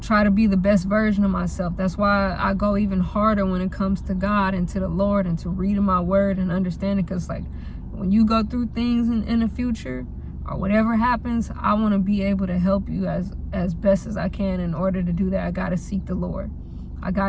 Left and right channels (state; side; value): identical; both; correlation 1.00